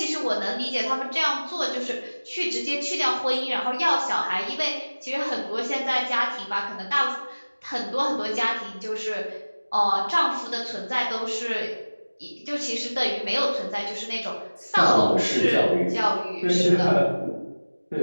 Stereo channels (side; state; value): both; inverted; correlation -1.00